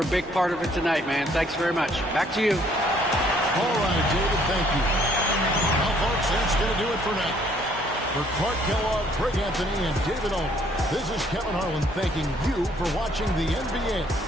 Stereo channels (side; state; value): both; normal; correlation 0.64